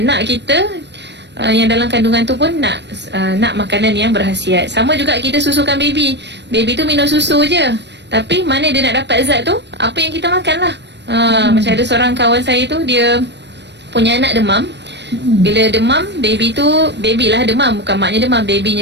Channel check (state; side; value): late; left; 0.50 ms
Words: kita yang dalam kandungan tu pun nak makanan yang berkhasiat. Sama juga kita susukan baby. Baby tu minum susu je, tapi mana dia nak dapat zat tu? Apa yang kita makan lah. Macam ada seorang kawan saya tu, dia punya anak demam. Bila demam, baby lah demam, bukan maknya demam,